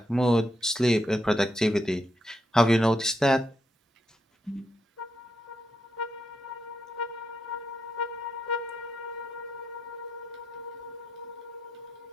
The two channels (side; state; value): both; normal; correlation 0.82